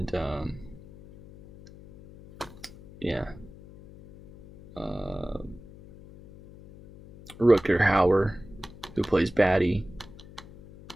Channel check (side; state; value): left; noise; hum, 19 dB below the sound